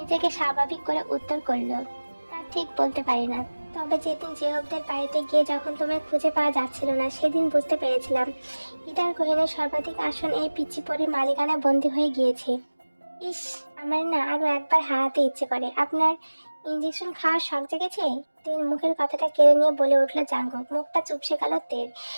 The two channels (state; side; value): inverted; both; correlation -1.00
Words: স্বাভাবিক করে উত্তর করলো, তা ঠিক বলতে পারি না, তবে যেদিন জেহবদের বাড়িতে গিয়ে যখন তোমায় খুঁজে পাওয়া যাচ্ছিল না সেদিন বুঝতে পেরেছিলাম ইটার গহিনের সর্বাধিক আসন এই পিচ্চি পরির মালিকানা বন্দী হয়ে গিয়েছে। ইস, আমার না আরো একবার হারাতে ইচ্ছে করে। আপনার ইঞ্জেকশন খাওয়ার শখ জেগেছে? তের মুখের কথাটা কেড়ে নিয়ে বলে উঠল জাঙ্কুক। মুখটা চুপসে গেল তের।